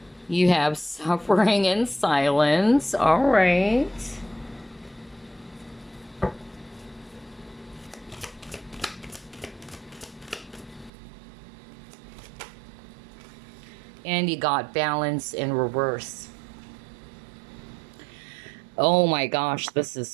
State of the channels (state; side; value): drops out; left; at 10.9 s